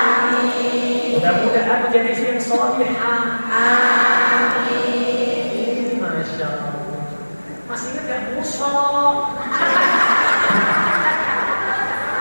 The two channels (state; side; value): inverted; both; correlation -1.00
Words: Mudah-mudahan menjadi istri yang salihah. Amin. Masya Allah. Masih ingat gak musuh?